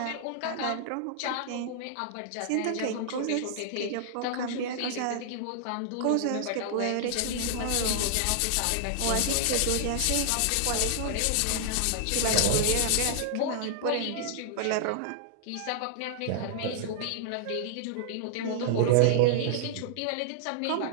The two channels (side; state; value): both; different; correlation -0.01